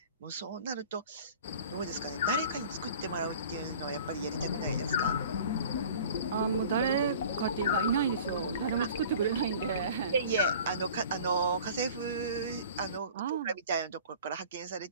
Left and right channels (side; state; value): both; inverted; correlation -0.45